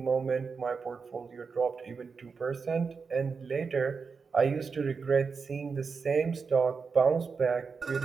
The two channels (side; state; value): left; quieter; 5.2 dB